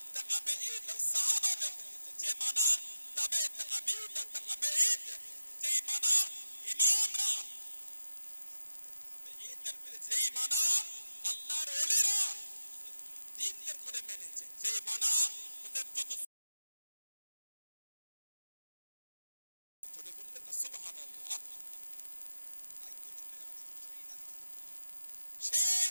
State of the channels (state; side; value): inverted; both; correlation -0.92